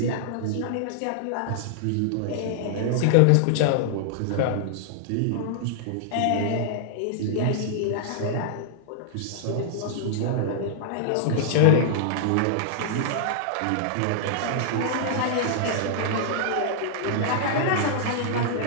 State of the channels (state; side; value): different; both; correlation -0.01